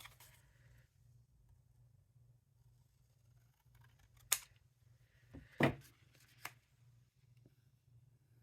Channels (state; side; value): identical; both; correlation 1.00